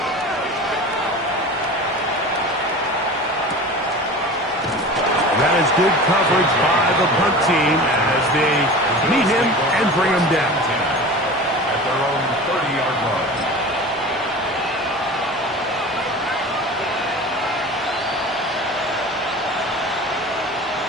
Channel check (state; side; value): normal; both; correlation 0.35